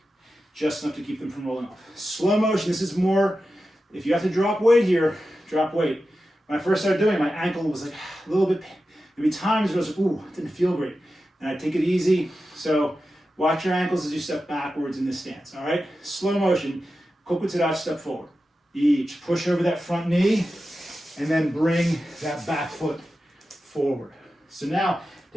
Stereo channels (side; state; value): both; normal; correlation 0.92